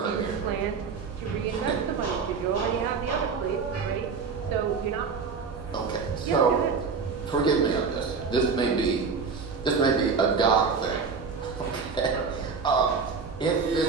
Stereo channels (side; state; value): left; quieter; 5.3 dB